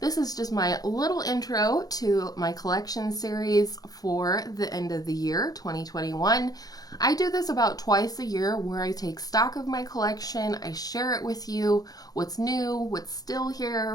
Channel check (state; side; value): late; right; 0.18 ms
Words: is just my little intro to my collection series for the end of the year, 2021. I do this about twice a year where I take stock of my collection, I share it with you, what's new, what's still